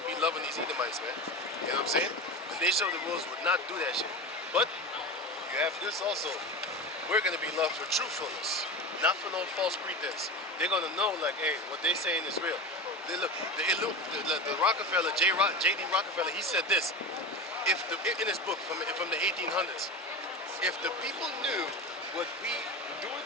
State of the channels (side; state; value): both; normal; correlation 0.26